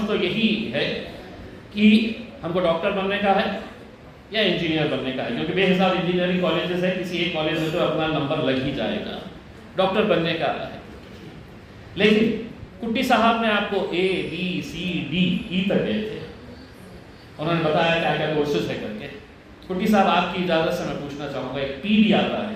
तो यही है कि हमको डॉक्टर बनने का है या इंजीनियर बनने का है, क्योंकि बेहिसाब इंजीनियरिंग कॉलेजेस है, किसी एक कॉलेज में तो अपना नंबर लग ही जाएगा। डॉक्टर बनने का है, लेकिन कुट्टी साहब ने आपको A, B, C, D, E तक गए थे, उन्होंने बताया क्या क्या कोर्सेज है करके। कुट्टी साहब आपकी इजाज़त से मैं पूछना चाहूँगा, एक P भी आता है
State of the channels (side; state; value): both; identical; correlation 1.00